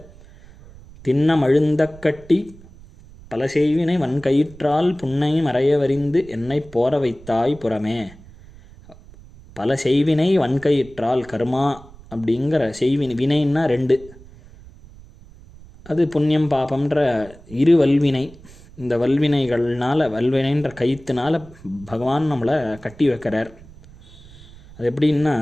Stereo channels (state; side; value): noise; right; rumble, 21 dB below the sound